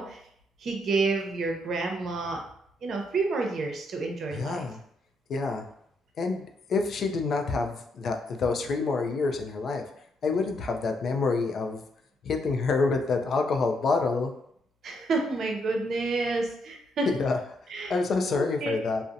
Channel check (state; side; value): normal; both; correlation 0.76